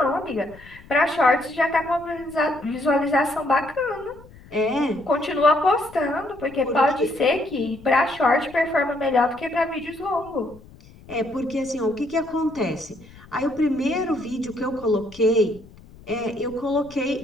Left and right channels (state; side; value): noise; left; rumble, 22 dB below the sound